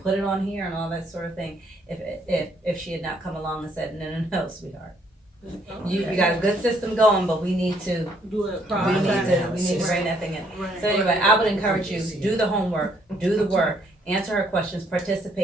put it on here and all that sort of thing if she had not come along and said, no, sweetheart. You got a good system going, but we need to Do it we need to bring that thing in. So anyway, I would encourage you, do the homework, do the work, answer her questions,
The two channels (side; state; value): both; normal; correlation 0.68